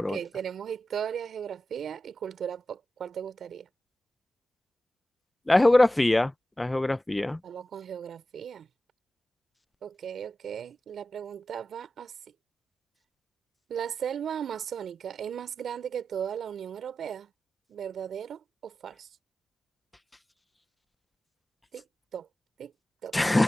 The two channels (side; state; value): both; normal; correlation 0.93